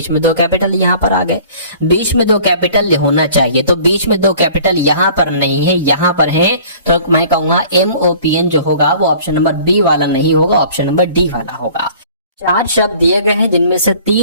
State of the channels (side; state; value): both; inverted; correlation -0.49